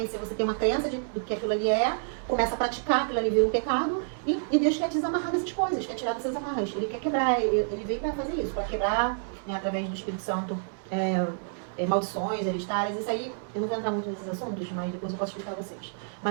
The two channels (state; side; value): silent; left; 59 dB below the other